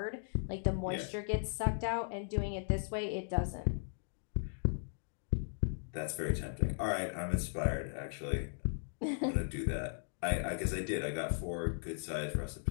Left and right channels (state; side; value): silent; right; digital silence